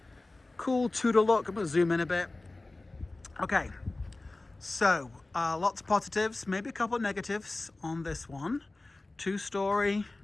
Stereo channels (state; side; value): quieter; right; 3.0 dB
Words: Tudor look. I'm gonna zoom in a bit. Okay, so lots of positives, maybe a couple of negatives on this one. 2-story.